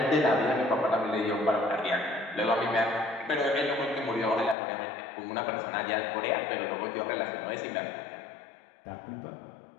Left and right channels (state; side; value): drops out; right; at 4.5 s